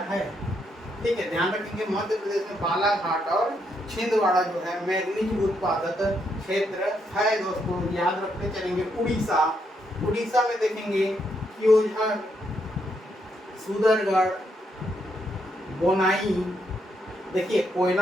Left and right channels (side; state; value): both; normal; correlation 0.77